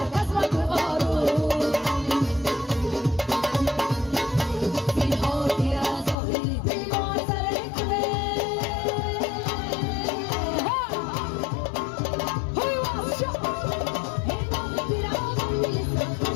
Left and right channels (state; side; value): drops out; right; at 6.2 s